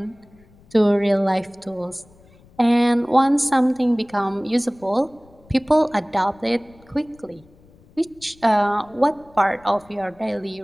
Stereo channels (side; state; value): left; noise; rumble, 28 dB below the sound